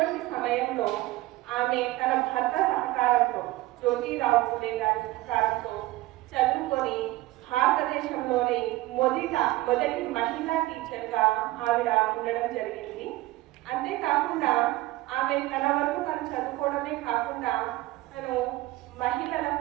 సమయంలో ఆమె తన భర్త సహకారంతో, జ్యోతిరావు ఫులే గారి సహకారంతో చదువుకొని భారతదేశంలోని మొదటి మహిళా టీచర్గా ఆవిడ ఉండడం జరిగింది. అంతేకాకుండా ఆమె తన వరకు తను చదువుకోవడమే కాకుండా తను మహిళల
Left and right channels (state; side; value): quieter; left; 18.1 dB